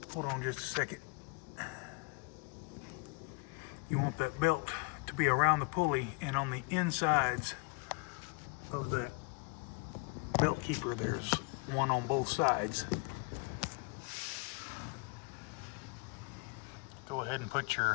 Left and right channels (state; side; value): quieter; right; 31.6 dB